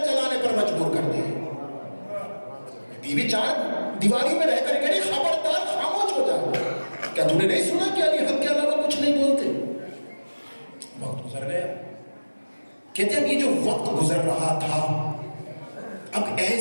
چلانے پر مجبور کر دے. بیوی چار دیواری میں رہ کر کہے خبردار خاموش ہو جا، کیا تم نے نہیں سنا کہ علی حق کے علاوہ کچھ نہیں بولتے؟ وقت گزر گیا. کہتے ہیں یہ جو وقت گزر رہا تھا اب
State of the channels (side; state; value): both; inverted; correlation -1.00